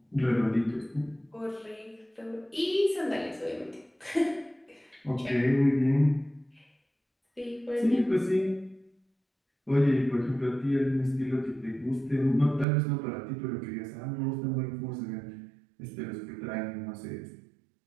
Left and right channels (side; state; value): left; drops out; at 12.7 s